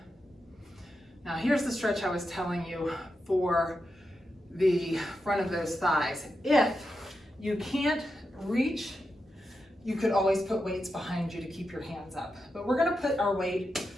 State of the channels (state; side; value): normal; both; correlation 0.88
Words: Now here's the stretch I was telling you for the front of those thighs. If you can't reach, you could always put weights behind you to keep your hands up. But we're gonna put our weight